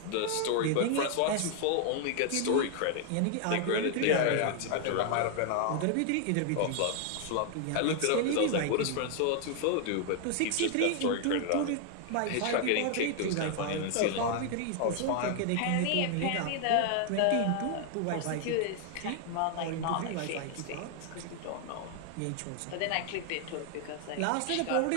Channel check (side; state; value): both; different; correlation 0.00